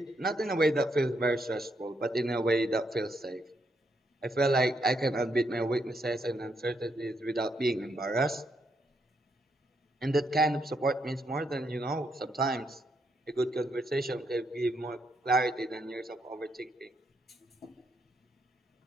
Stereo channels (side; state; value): both; normal; correlation 0.77